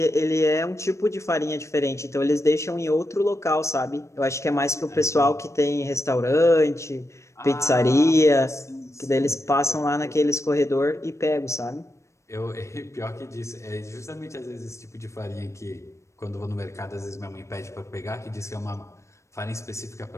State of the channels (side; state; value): right; late; 0.14 ms